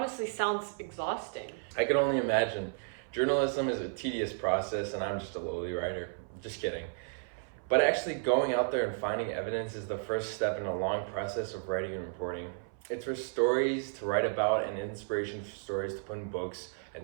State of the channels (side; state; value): left; silent; 56 dB below the other